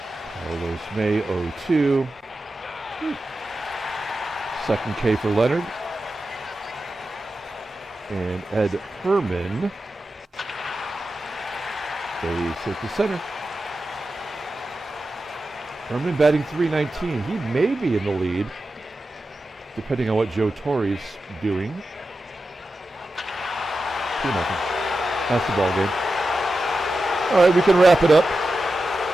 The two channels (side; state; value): both; normal; correlation 0.91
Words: Carlos May 0-2. Second K for Leonard. And Ed Herrmann. Base hit to center. Herrmann batting .319. He may be in the lead, depending on what Joe Torre's doing. 2-0. That's the ball game. All right, we can wrap it up.